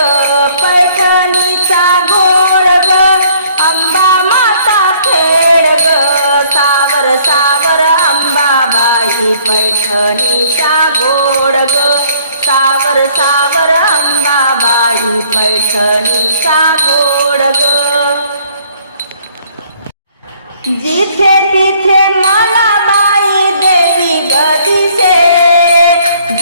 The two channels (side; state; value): both; inverted; correlation -0.59